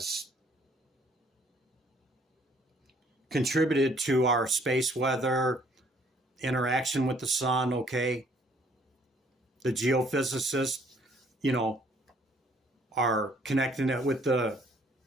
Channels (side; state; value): both; normal; correlation 0.62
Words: contributed to our space weather, interaction with the sun. Okay, the geophysicists, are connecting it with the